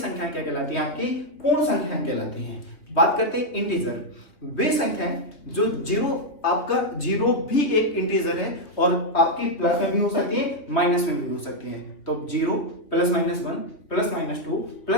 क्या कहलाती हैं? आपकी पूर्ण संख्याएं कहलाती हैं। बात करते हैं इंटीजर, वे संख्याएं जो आपका 0 भी एक इंटीजर है और आपकी प्लस में भी हो सकती है माइनस में भी हो सकती है। तो 0 +-1 +-2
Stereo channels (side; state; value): right; late; 2.9 ms